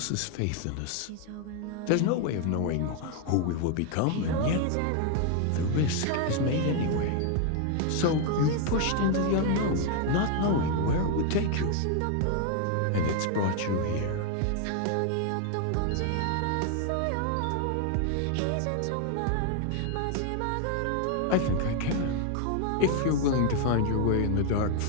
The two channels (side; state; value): both; different; correlation 0.01